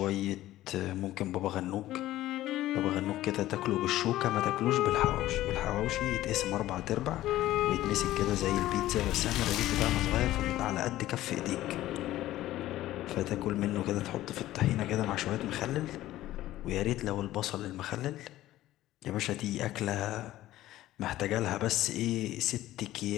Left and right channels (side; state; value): right; quieter; 14.9 dB